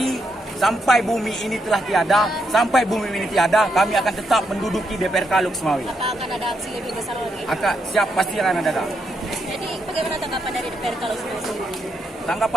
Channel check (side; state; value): both; normal; correlation 0.80